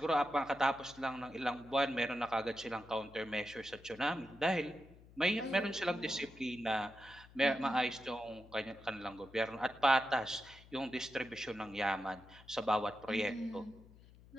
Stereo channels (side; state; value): left; noise; hum, 22 dB below the sound